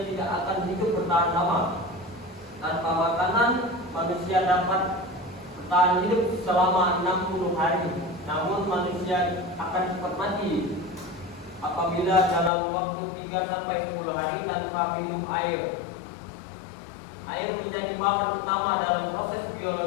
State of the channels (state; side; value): drops out; right; at 12.5 s